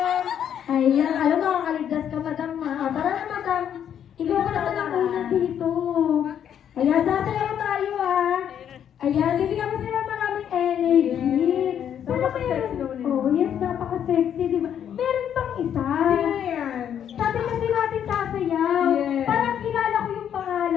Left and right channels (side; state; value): right; quieter; 9.2 dB